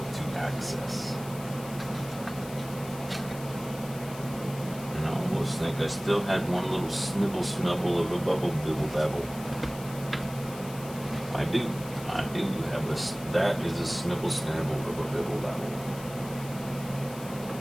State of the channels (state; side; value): noise; left; hiss, 16 dB below the sound